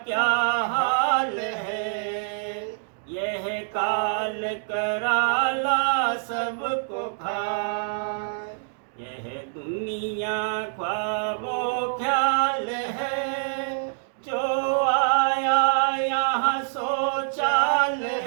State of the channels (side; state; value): left; silent; digital silence